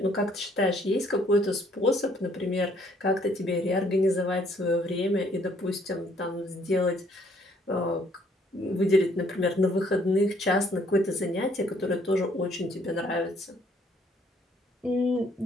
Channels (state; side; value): normal; both; correlation 0.64